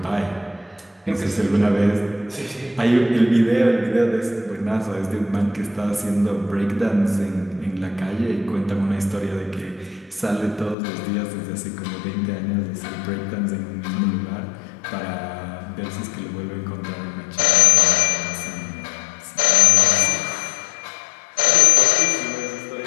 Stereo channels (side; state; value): right; drops out; at 10.8 s